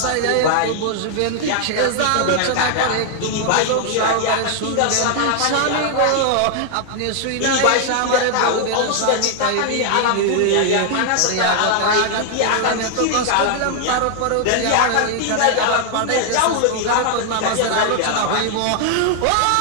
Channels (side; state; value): both; different; correlation 0.00